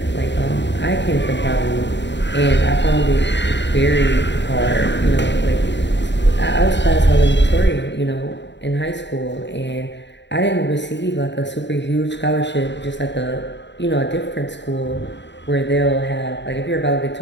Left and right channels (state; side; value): late; right; 0.52 ms